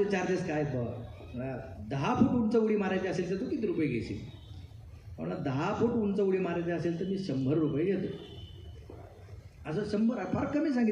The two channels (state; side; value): identical; both; correlation 1.00